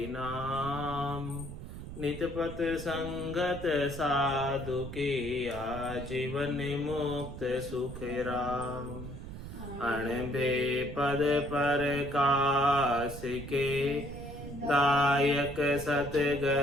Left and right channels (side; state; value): right; noise; rumble, 10 dB below the sound